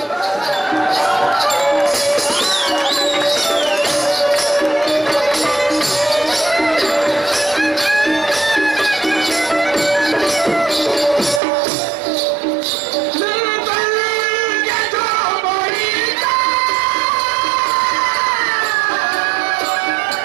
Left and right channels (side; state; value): left; drops out; at 11.4 s